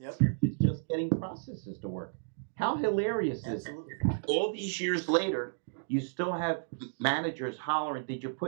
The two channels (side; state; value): left; silent; digital silence